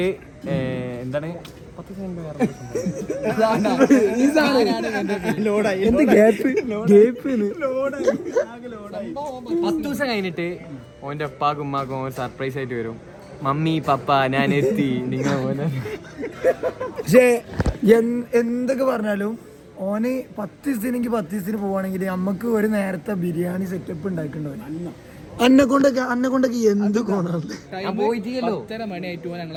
എന്താണ് 10 ദിവസം കഴിഞ്ഞിട്ട് ഓന്റെ ഉപ്പാക്കും ഉമ്മാക്കും ഒരു സർപ്രൈസ് ആയിട്ട് വരും. മമ്മി പപ്പ ഞാൻ എത്തി നിങ്ങൾ പോലെ. പക്ഷേ എന്തൊക്കെ പറഞ്ഞാലും ഓന് 10 ദിവസത്തിനെങ്കിൽ 10 ദിവസത്തിന് പോവാണെങ്കിൽ നമ്മക്ക് ഒരു നേരത്തെ ബിരിയാണി സെറ്റപ്പ് ഉണ്ടാക്കണ്ടാവും. അന്നെ കൊണ്ടൊക്കെ എന്ത് കോണാണ്.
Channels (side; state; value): both; identical; correlation 1.00